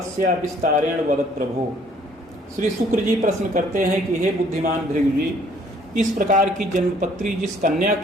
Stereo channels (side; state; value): both; normal; correlation 0.61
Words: विस्तारेण वद प्रभो। श्री शुक्र जी प्रश्न करते हैं कि हे बुद्धिमान भृगु जी, इस प्रकार की जन्मपत्री जिस कन्या